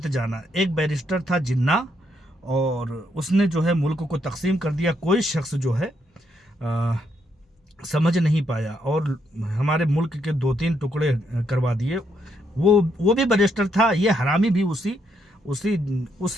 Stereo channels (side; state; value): both; normal; correlation 0.76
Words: जाना। एक बैरिस्टर था जिन्ना, और उसने जो है मुल्क को तकसीम कर दिया। कोई शख्स जो है समझ नहीं पाया और हमारे मुल्क के 2-3 टुकड़े करवा दिए। वो भी बैरिस्टर था, ये हरामी भी उसी